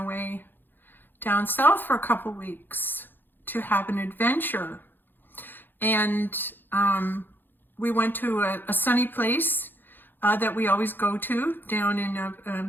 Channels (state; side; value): late; right; 0.094 ms